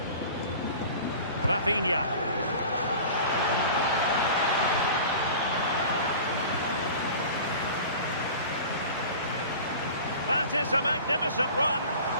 Rafinha. That is a magnificent run.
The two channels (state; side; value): inverted; both; correlation -0.39